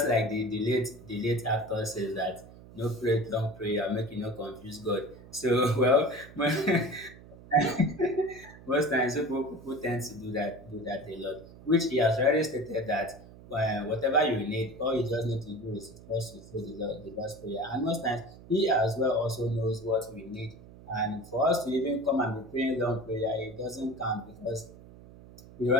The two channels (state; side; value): noise; right; hum, 19 dB below the sound